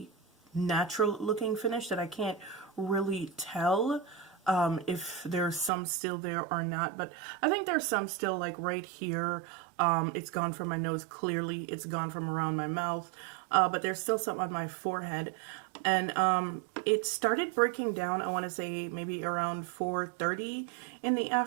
natural looking finish that I can't really tell if there's some still there or not. But I think there's some still, like right here. It's gone from my nose clearly. It's gone from around my mouth. But there's still some on my forehead. And it started breaking down, I want to say maybe around 4:30 in the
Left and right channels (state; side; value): drops out; left; at 5.7 s